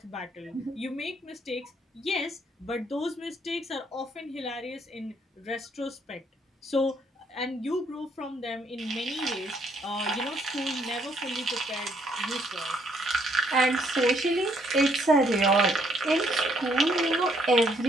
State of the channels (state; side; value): normal; both; correlation 0.69